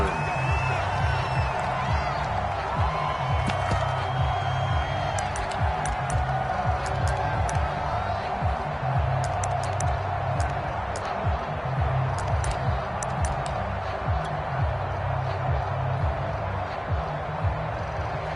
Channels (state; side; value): identical; both; correlation 1.00